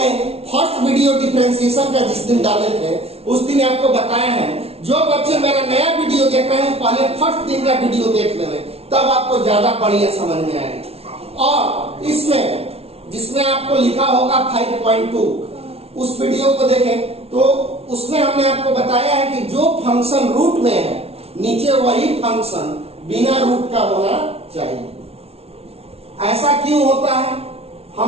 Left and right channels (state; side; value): late; left; 0.30 ms